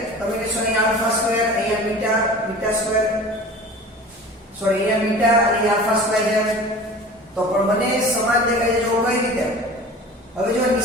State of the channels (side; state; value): both; normal; correlation 0.39